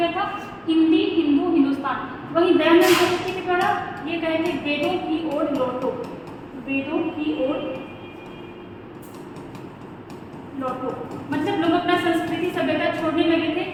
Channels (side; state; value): both; identical; correlation 1.00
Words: था? हिंदी, हिंदू, हिंदुस्तान। वहीं दयानंद सरस्वती के द्वारा ये कहे थे वेदों की ओर लौटो। मतलब लोग अपना संस्कृति सभ्यता छोड़ने लगे थे,